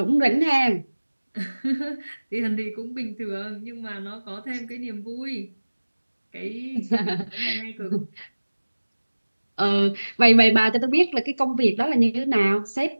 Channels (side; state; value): both; inverted; correlation -1.00